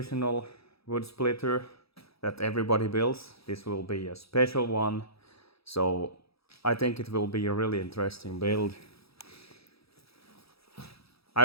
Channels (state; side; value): late; right; 0.77 ms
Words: wood splitter that everybody builds. This will be a special one. So I think it will be a really interesting build. I